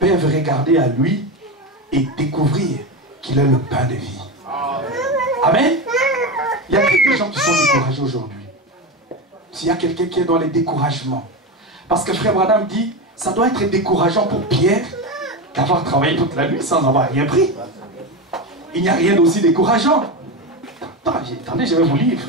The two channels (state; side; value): normal; both; correlation 0.18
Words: regarder à lui et découvrir qu'il est le pain de vie. Amen. Il y a des gens qui sont découragés aujourd'hui. S'il y a quelqu'un qui est dans les découragements. Parce que Frère Branham dit, ça doit être décourageant pour Pierre d'avoir travaillé toute la nuit sans avoir rien pris. Il n'y a rien d'aussi décourageant. Attendez, je vais vous lire,